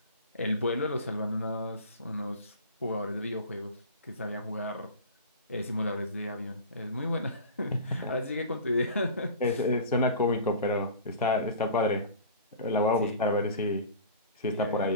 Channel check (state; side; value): inverted; both; correlation -0.37